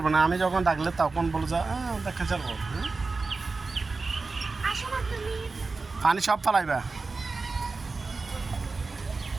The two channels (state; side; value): quieter; left; 4.0 dB